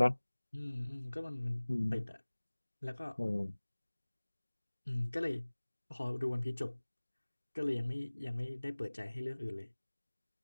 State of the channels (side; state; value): both; inverted; correlation -1.00